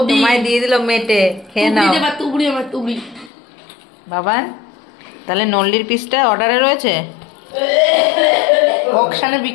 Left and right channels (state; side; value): drops out; right; at 3.3 s